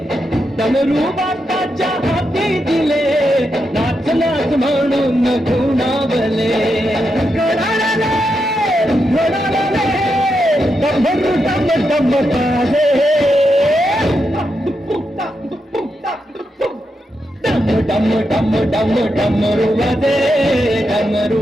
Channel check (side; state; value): both; normal; correlation 0.85